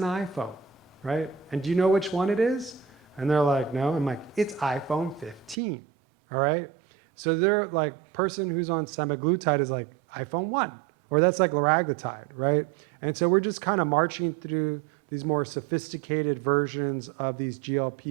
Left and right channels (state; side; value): drops out; left; at 5.6 s